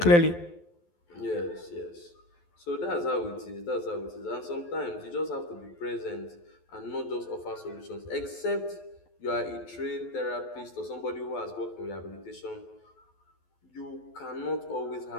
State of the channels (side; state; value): right; late; 12 ms